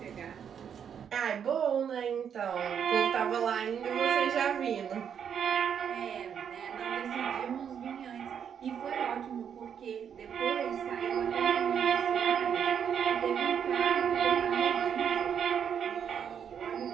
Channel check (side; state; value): left; quieter; 8.0 dB